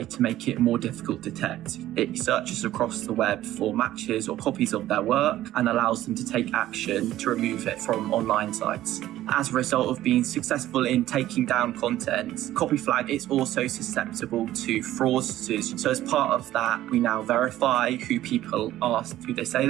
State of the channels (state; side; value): quieter; left; 14.0 dB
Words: to make it more difficult to detect. It searches across the web for matches or copies of their work and allows them to take action to remove it from online sites. As a result of being successful in taking down content, Copy Flag is also susceptible to fraudsters. So as part of that, we now verify who people are, who they say